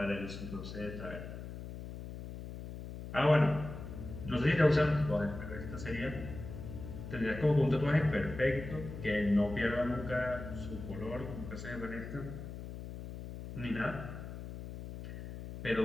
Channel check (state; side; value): noise; left; hum, 10 dB below the sound